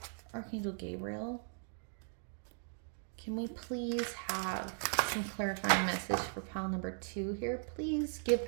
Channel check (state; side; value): silent; left; 52 dB below the other